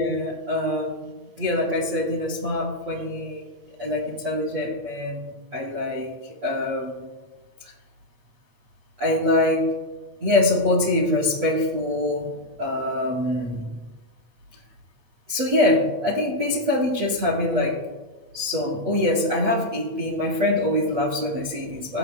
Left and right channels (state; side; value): late; left; 8.4 ms